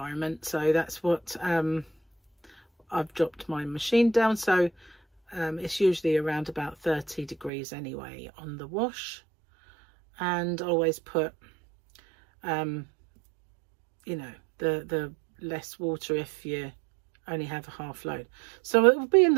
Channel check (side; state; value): left; drops out; at 7.5 s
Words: So that's what I've dropped my machine down. So it's usually around about 30 degrees anyway on the wash. And always put, you know, the less water if you only have a half load. So it will be in